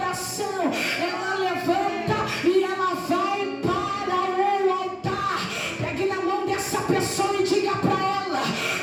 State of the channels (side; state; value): both; identical; correlation 1.00